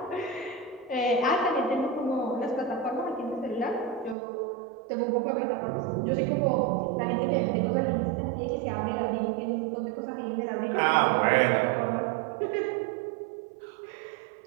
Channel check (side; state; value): left; drops out; at 4.2 s